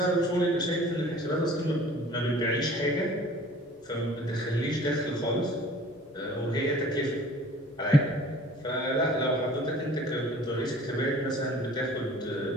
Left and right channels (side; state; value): both; normal; correlation 0.49